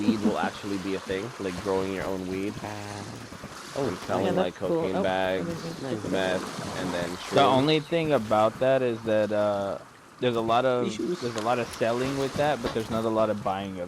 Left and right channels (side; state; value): both; identical; correlation 1.00